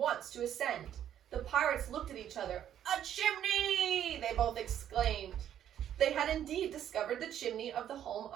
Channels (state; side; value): quieter; left; 10.4 dB